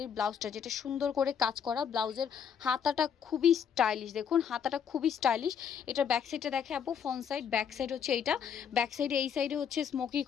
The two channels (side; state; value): right; quieter; 7.8 dB